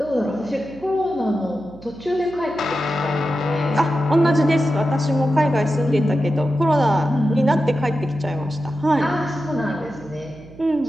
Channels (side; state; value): right; noise; hum, 20 dB below the sound